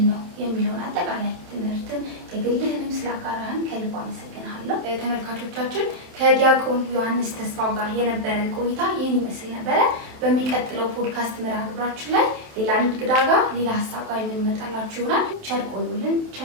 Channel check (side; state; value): left; late; 27 ms